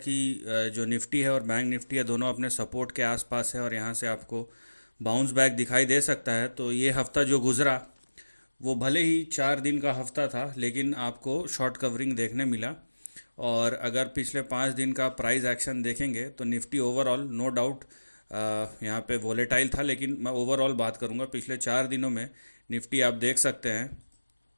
जो निफ्टी है और बैंक निफ्टी है दोनों अपने सपोर्ट के आसपास है और यहाँ से आपको बाउंस बैक दिखाई दे सकता है। तो ये हफ्ता जो गुज़रा वो भले ही 4 दिन का हफ्ता था, लेकिन आपको शॉर्ट कवरिंग देखने मिला। और अगर पिछले 5 दिन का प्राइस एक्शन देखेंगे तो निफ्टी ओवरऑल नो डाउट यहाँ पे वोलेटाइल था, लेकिन मैं ओवरऑल बात करूँगा पिछले 4 दिनों में। निफ्टी आप देख सकते हैं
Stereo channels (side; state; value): both; inverted; correlation -1.00